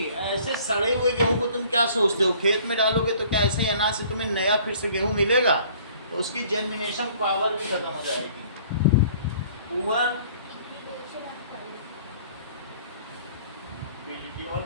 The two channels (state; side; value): inverted; both; correlation -0.54